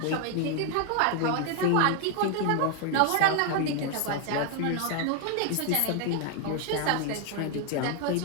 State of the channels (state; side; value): different; both; correlation 0.00